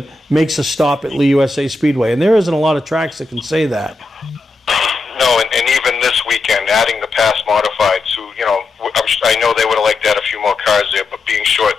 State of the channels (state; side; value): quieter; right; 3.3 dB